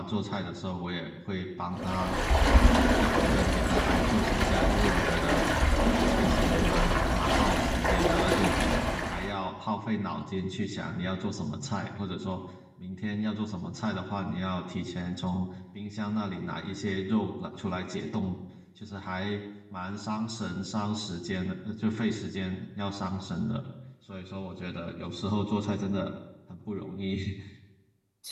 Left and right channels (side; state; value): both; identical; correlation 1.00